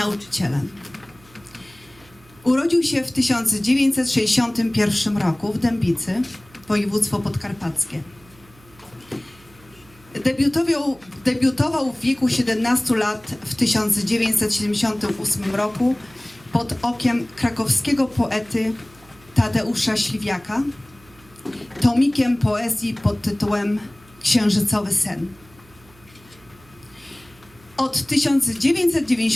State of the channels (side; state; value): right; noise; hum, 26 dB below the sound